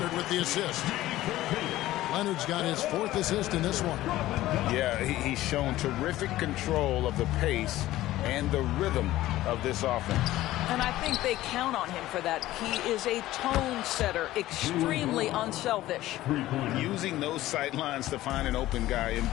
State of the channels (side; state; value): right; quieter; 15.6 dB